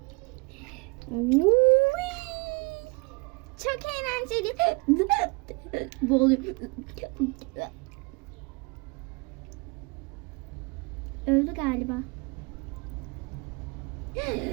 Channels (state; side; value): quieter; left; 28.8 dB